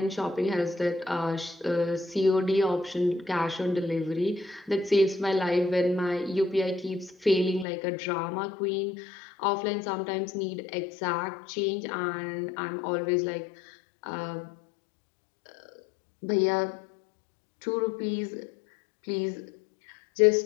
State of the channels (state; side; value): drops out; right; at 7.7 s